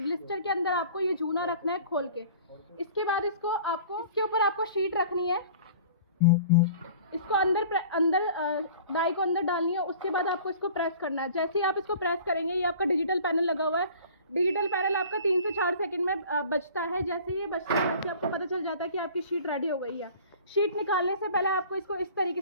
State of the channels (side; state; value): both; inverted; correlation -0.46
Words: अंदर आपको ये जूना रखना है खोल के। इसके बाद इसको आपको इसके ऊपर आपको शीट रखनी है, इसको अंदर डाई को अंदर डालनी है। उसके बाद आपको इसको प्रेस करना है। जैसे ही आप इसको प्रेस करेंगे ये आपका डिजिटल पैनल लगा हुआ है। डिजिटल पैनल आपका 3 से 4 सेकंड में बचता है। जैसे ही ये बचता है वैसे आपको पता चल जाता है कि आपकी शीट रेडी हो गई है। शीट निकालने से पहले आपको इसको इस तरीके